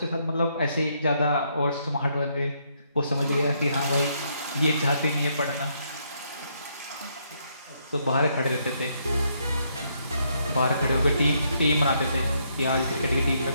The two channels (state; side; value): inverted; both; correlation -0.74